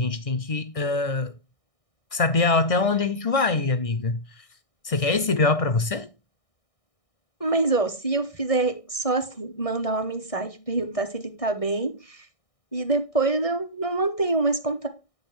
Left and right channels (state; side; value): late; right; 1.6 ms